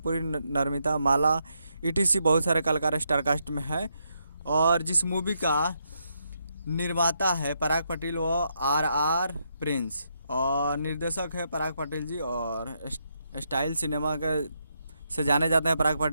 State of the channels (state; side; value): inverted; both; correlation -0.79